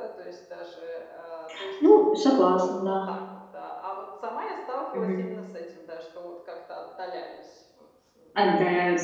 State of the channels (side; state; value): both; identical; correlation 1.00